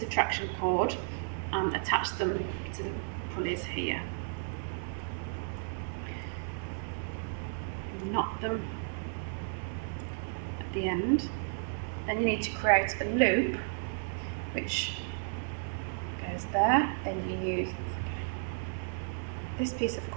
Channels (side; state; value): left; silent; 56 dB below the other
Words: of traction cord and attach them to the pulleys here. Knot them at the end. Then you need to create a loop which goes there. Then you use this piece of